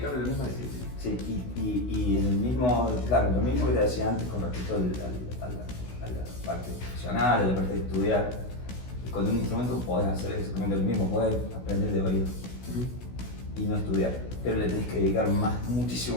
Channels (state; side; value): late; right; 16 ms